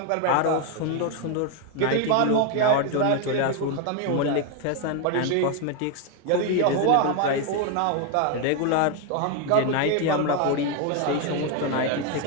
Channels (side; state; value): both; different; correlation 0.01